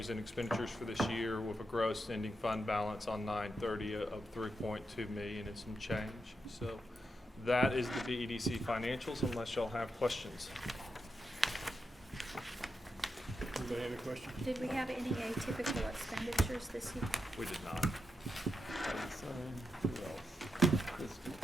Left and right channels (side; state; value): both; normal; correlation 0.85